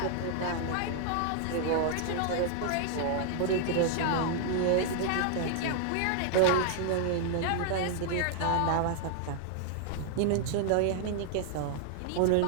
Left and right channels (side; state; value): both; different; correlation 0.00